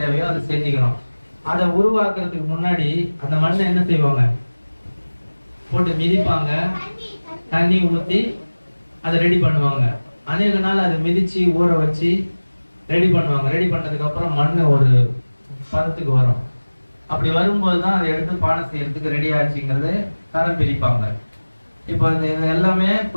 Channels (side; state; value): both; inverted; correlation -1.00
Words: அதை செஞ்சுக்கிறோம். அதை உருவாக்குறதுக்கு முன்னாடி அந்த மண்ணை என்ன செய்வாங்க? போட்டு மிதிப்பாங்க, தண்ணி ஊற்றி அதை ரெடி பண்ணுவாங்க. அநேக நாள் அதை மிதிச்சு ஊற வச்சு ரெடி பண்ணுவாங்க. ரெடி பண்ணதுக்கு அப்புறம் மண் ஒரு பதத்துக்கு வரும். அப்படி வரும்போது தான் அதை எடுத்து பானை செய்யறதுக்கு ரெடி ஆச்சுங்கிறது தரம் பிரிப்பாங்க. இப்போ இது எல்லாமே